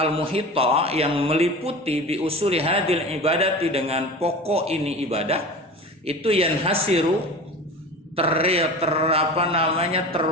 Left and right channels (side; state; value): both; normal; correlation 0.34